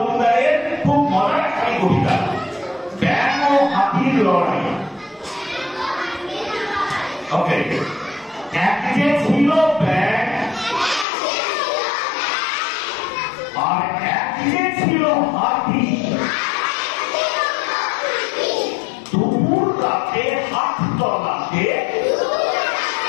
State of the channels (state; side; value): drops out; right; at 11.1 s